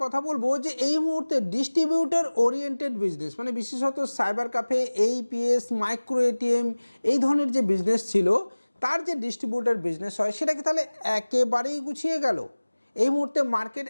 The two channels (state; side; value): inverted; both; correlation -1.00